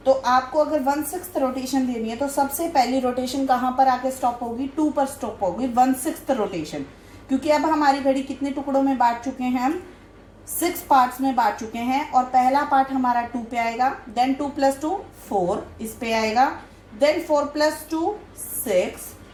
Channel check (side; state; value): both; identical; correlation 1.00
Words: तो आपको अगर 1/6 रोटेशन देनी है, तो सबसे पहली रोटेशन कहाँ पर आके स्टॉप होगी, 2 पर स्टॉप होगी 1/6 रोटेशन। क्योंकि अब हमारी घड़ी कितने टुकड़ों में बांट चुके हैं, हम 6 पार्ट्स में बांट चुके हैं, और पहला पार्ट हमारा 2 पे आएगा, देन 2 + 2 4 इस पे आएगा, then 4 + 2 6,